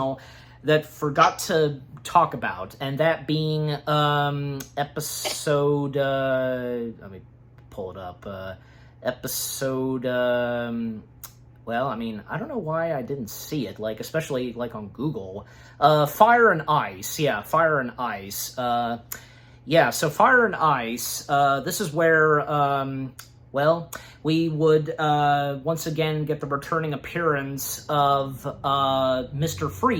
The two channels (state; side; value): identical; both; correlation 1.00